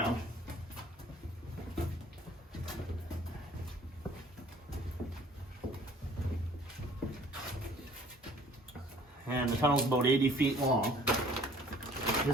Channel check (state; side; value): normal; both; correlation 0.53